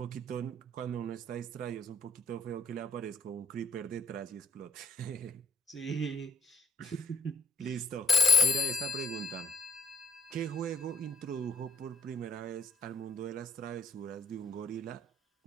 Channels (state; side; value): normal; both; correlation 0.75